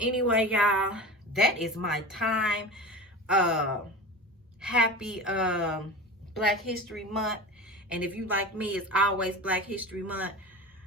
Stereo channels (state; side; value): normal; both; correlation 0.30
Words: y'all, that is my time. Happy Black History Month. And if you like me, it's always Black History Month.